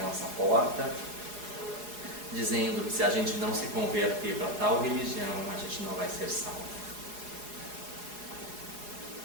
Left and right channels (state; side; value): late; left; 4.8 ms